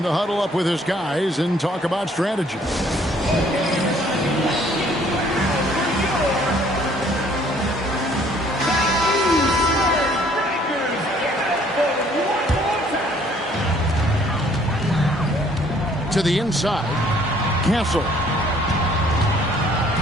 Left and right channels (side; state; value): both; normal; correlation 0.60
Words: to huddle up with his guys and talk about strategy. To the inside, Castle.